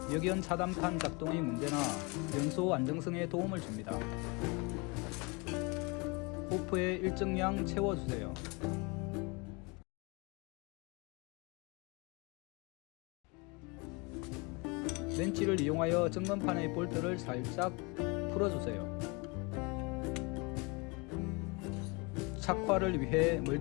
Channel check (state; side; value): quieter; right; 29.0 dB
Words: 역연 차단판 작동의 문제나 연소 안정성에 도움을 줍니다. 호프에 일정량 채워주세요. 렌치를 이용하여 점검판의 볼트를 살짝 풀어주세요. 착화를 위해